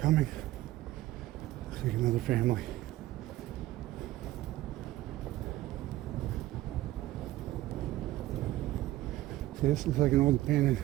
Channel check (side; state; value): left; quieter; 16.1 dB